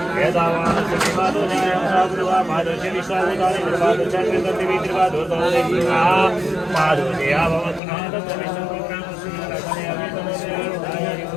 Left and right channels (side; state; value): right; drops out; at 7.8 s